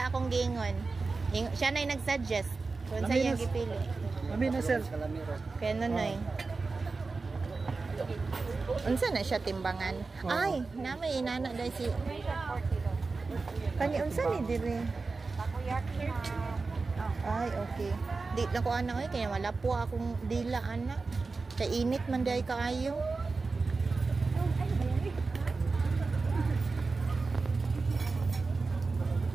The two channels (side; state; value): left; quieter; 4.0 dB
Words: akong gingon. Siya nay nag-suggest kung sa iyang gipili. Amin na sir. Kaya Nonoy. Unsa na siya timbangan? Ay, namay inana dai si Kani unsa ni diri? Ay, okay. Di na ko ana kaya wala po akong dila ana. Kay init man day kaayo.